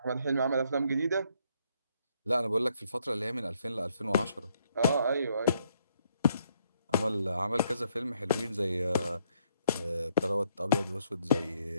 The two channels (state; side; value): inverted; both; correlation -0.72